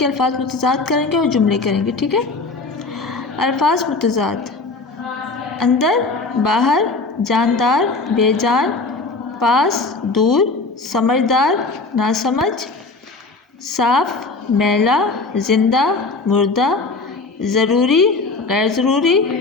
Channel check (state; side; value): quieter; right; 3.8 dB